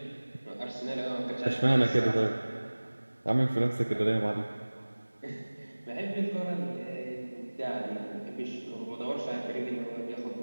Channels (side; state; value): both; inverted; correlation -1.00